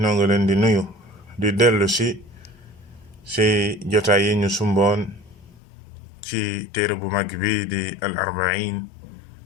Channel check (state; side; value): drops out; right; at 5.6 s